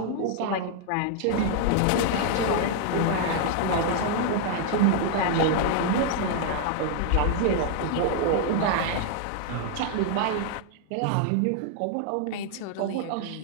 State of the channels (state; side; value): different; both; correlation 0.00